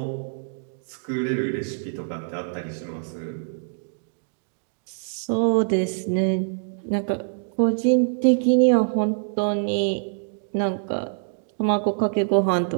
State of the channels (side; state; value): left; silent; digital silence